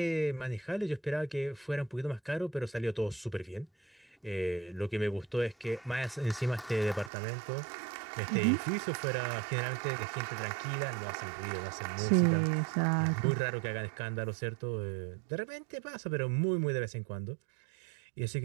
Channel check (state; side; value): drops out; left; at 7.1 s